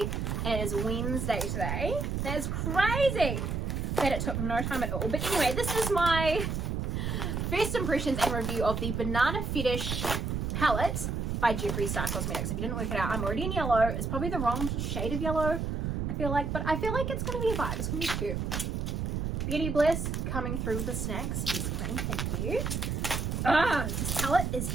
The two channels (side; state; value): right; noise; rumble, 1 dB below the sound